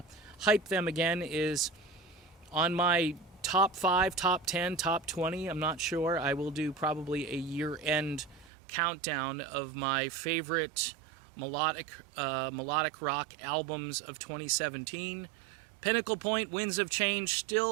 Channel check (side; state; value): left; drops out; at 8.5 s